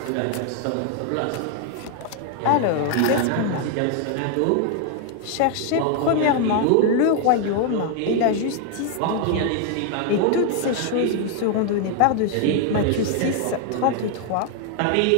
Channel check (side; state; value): both; different; correlation 0.00